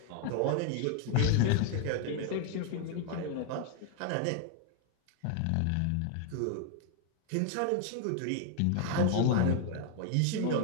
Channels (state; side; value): different; both; correlation 0.00